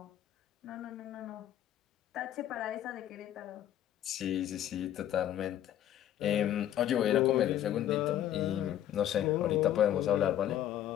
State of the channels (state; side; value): quieter; right; 11.6 dB